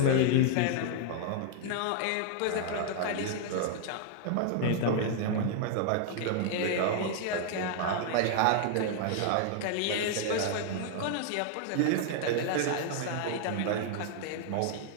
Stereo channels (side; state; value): both; different; correlation 0.00